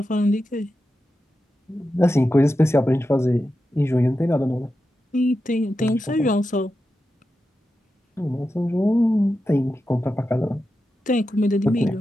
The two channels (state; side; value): normal; both; correlation 0.90